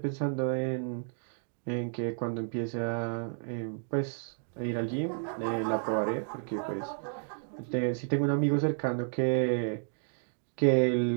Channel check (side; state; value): left; silent; digital silence